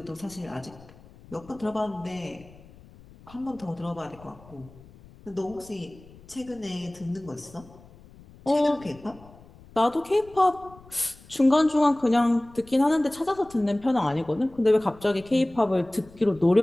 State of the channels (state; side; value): noise; left; rumble, 23 dB below the sound